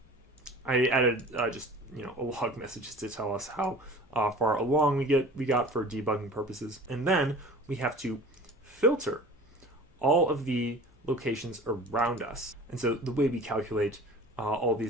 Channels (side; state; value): both; normal; correlation 0.41